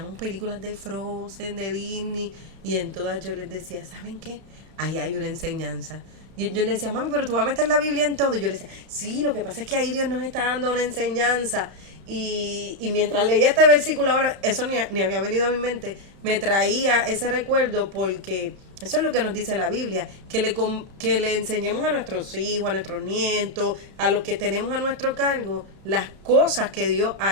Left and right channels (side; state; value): left; late; 31 ms